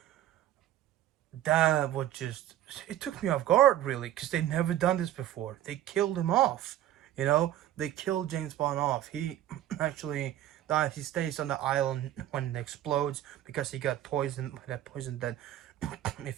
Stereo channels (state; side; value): quieter; left; 12.8 dB